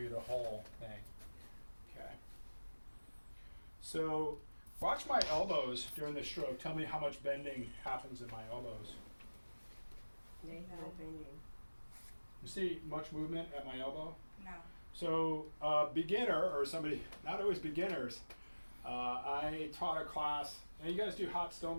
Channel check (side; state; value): both; inverted; correlation -1.00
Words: the whole thing. Okay. So watch my elbows during the stroke. Tell me how much bending happens in my elbows. No bending. You see much movement at my elbow? No. So beginner, or somebody, not always beginners, I taught a class, and you guys do hot